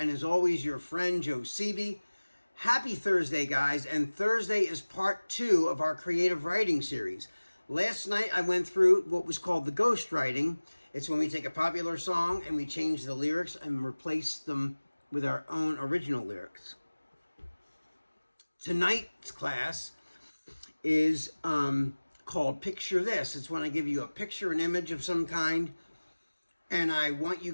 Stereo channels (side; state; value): both; inverted; correlation -1.00